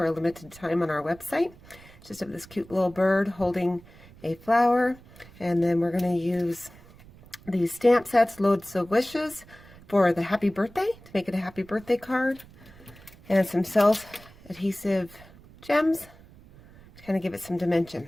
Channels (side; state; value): right; noise; rumble, 23 dB below the sound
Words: a limited time on our website. It's just of this cute little bird holding a flower, and then we're going to use these stamp sets, Loads of Wishes, for the happy birthday, to make it a happy birthday card, and some self-adhesive gems to kind of give it some